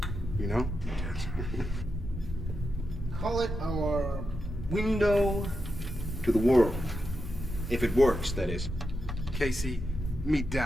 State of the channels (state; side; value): normal; both; correlation 0.87